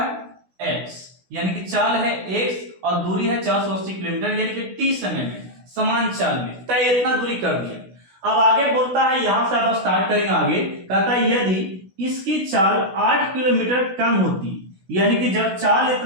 x, यानी कि चाल है x और दूरी है 480 किलोमीटर, यानी कि t समय में समान चाल में तय इतना दूरी कर दिया। अब आगे बोलता है, यहां से आप स्टार्ट करेंगे आगे, कहता है यदि इसकी चाल 8 किलोमीटर कम होती, यानी कि जब चाल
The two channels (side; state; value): left; late; 16 ms